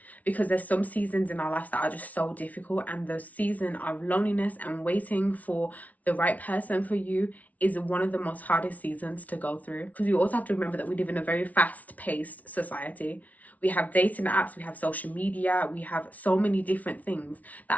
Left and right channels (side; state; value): right; late; 0.071 ms